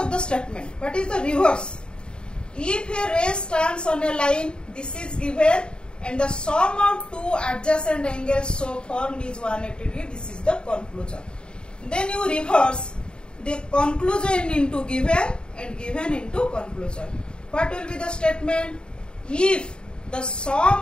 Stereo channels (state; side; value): late; right; 0.050 ms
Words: the statement? What is the reverse? If a ray stands on a line, this is given, and the sum of two adjacent angles so formed is 180 degree. This is the conclusion. Then you reverse the conclusion into given and given into conclusion. What will be the statement? If the